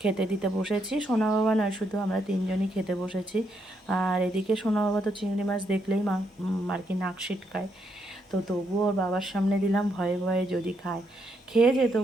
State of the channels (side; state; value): both; normal; correlation 0.77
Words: খেতে দিতে বসেছি। সোনা বাবা নয়, শুধু আমরা তিনজনই খেতে বসেছি। আর এদিকে সোনা বাবা তো চিংড়ি মাছ দেখলেই আর কি নাক সিটকায়। তো তবুও ওর বাবার সামনে দিলাম, ভয়ে ভয়ে যদি খায়। খেয়েছে,